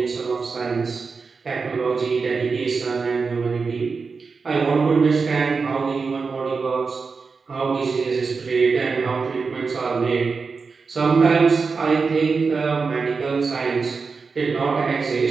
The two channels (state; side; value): quieter; left; 4.8 dB